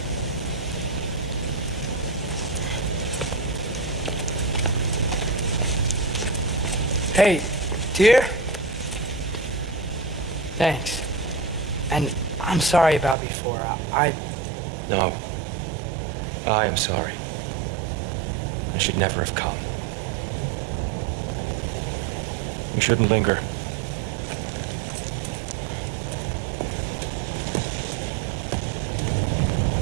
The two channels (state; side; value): drops out; left; at 13.2 s